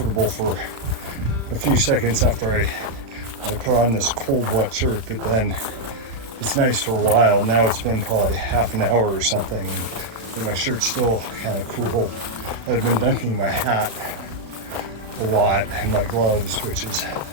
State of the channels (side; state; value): left; late; 35 ms